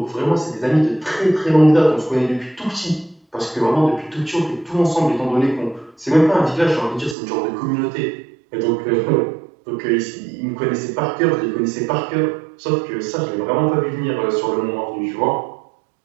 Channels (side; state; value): left; drops out; at 7.2 s